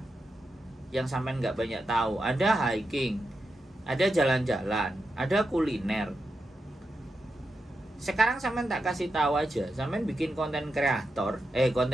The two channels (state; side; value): normal; both; correlation 0.87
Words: yang sampean nggak banyak tahu. Ada hiking, ada jalan-jalan, ada kuliner. sekarang sampean tak kasih tahu aja, sampean bikin konten kreator,